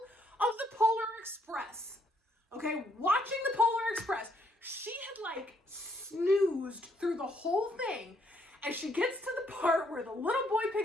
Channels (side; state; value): both; normal; correlation 0.71